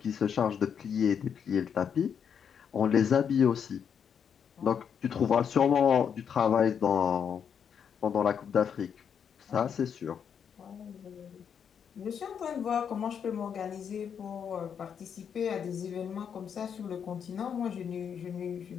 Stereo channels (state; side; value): quieter; right; 7.6 dB